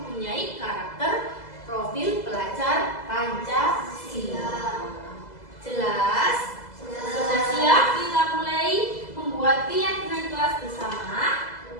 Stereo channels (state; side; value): late; right; 2.0 ms